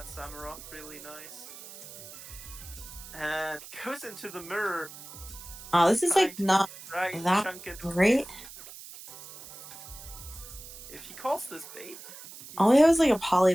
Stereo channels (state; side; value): noise; right; hiss, 15 dB below the sound